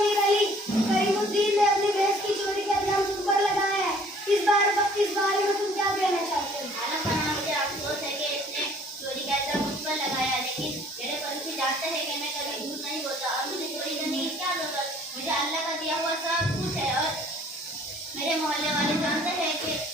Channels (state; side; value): normal; both; correlation 0.56